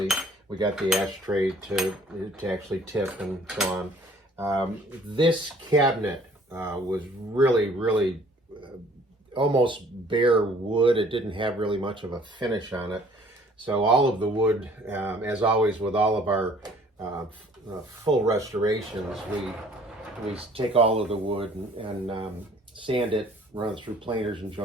We got the ashtray to actually tip and so on. This cabinet was really almost bare wood. It didn't have really much of a finish on it. So all of the wood, as always with all of our full restorations, we take all of the wood and sand it, run it through planers and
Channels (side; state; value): both; normal; correlation 0.56